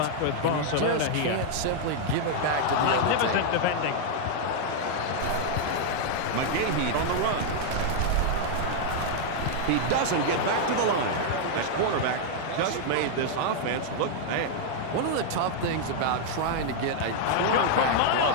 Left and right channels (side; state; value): both; different; correlation -0.01